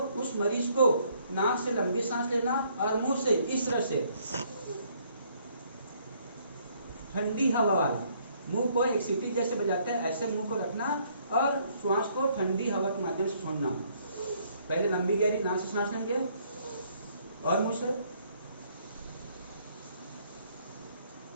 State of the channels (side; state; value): both; inverted; correlation -0.66